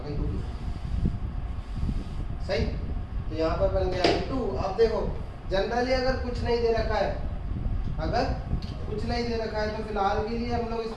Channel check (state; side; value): identical; both; correlation 1.00